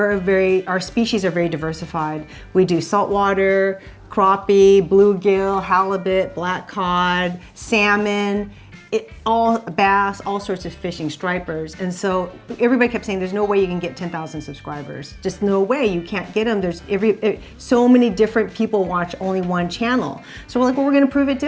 species are very diversified. We do saltwater, crappie, bluegill, halibut, black cod, salmon, all bass, all sorts of fishing, stripers. And so everybody kept saying, there's no way you can get 10,000 subscribers. Just no way, you can't get them. There's so many different people watch only one channel. So we're like, well, we're gonna prove it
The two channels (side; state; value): both; identical; correlation 1.00